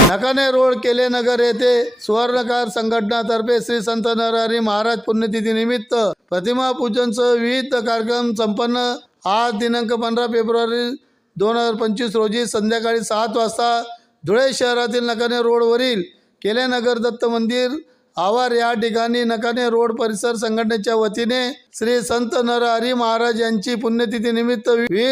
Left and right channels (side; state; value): both; normal; correlation 0.97